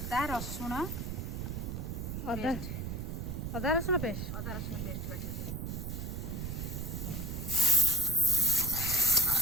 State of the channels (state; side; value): noise; right; rumble, 4 dB below the sound